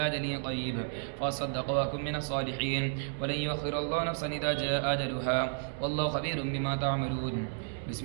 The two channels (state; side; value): silent; left; digital silence